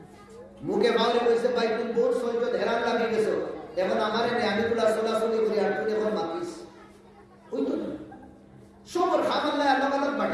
মুখে বাউলে কইছে ভাই তুমি বহুত সহ্য হেরান লাগি গেছো এখন আমারে নে আমি গুলা সোলাসলি করে আর তুই এখন মাতিস ওই তো সবর খাম আল্লাহ আল্লাহ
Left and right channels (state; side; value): identical; both; correlation 1.00